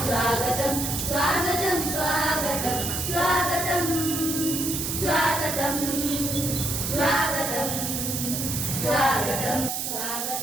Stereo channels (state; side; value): noise; right; hiss, 2 dB below the sound